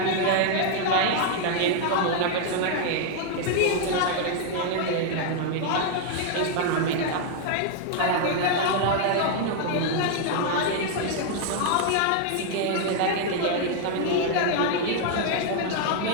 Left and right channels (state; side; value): different; both; correlation 0.00